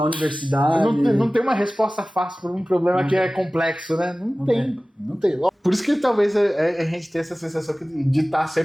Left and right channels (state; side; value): normal; both; correlation 0.97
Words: universidade. Não tem uma resposta fácil para um problema que é complexo, né? Não tem. Por isso que talvez a gente tenha essa sensação de estar